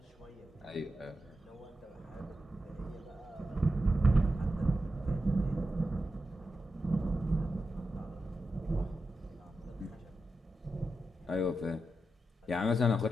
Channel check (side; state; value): both; normal; correlation 0.89